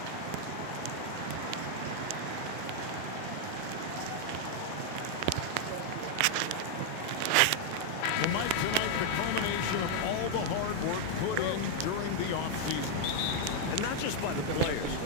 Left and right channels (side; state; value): both; different; correlation 0.00